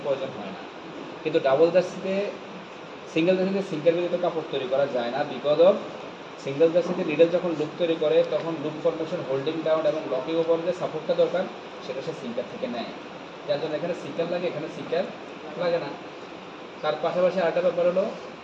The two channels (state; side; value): identical; both; correlation 1.00